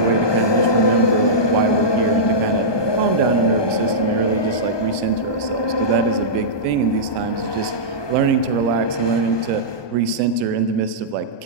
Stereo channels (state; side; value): late; right; 1.2 ms